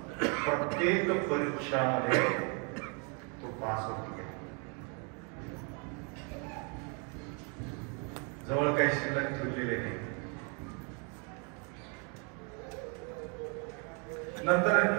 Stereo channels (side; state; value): left; quieter; 36.1 dB